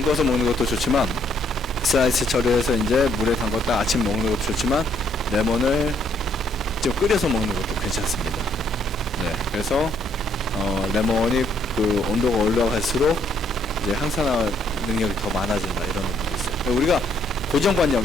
먹는 것도 좋지만 슬라이스 처리해서 이제 물에 담갔다 아침 먹는 것도 좋지만 레몬을 좀 끓여서 먹는 것도 괜찮습니다. 네, 그래서 레몬이 그 온도가 올라갈수록 이제 항산화 능력이 더 많아진다 이런 논문도 있어요. 우리가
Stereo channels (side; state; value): both; normal; correlation 0.69